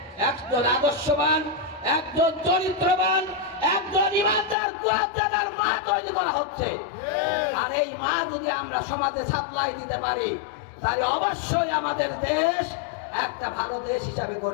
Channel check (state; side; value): drops out; right; at 4.5 s